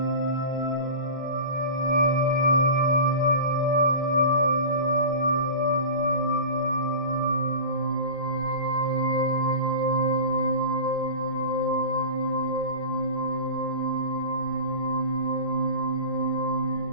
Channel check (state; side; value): late; left; 5.5 ms